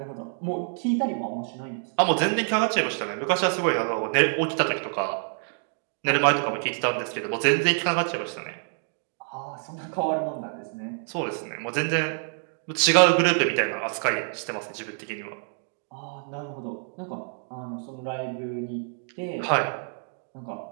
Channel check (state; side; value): silent; left; 60 dB below the other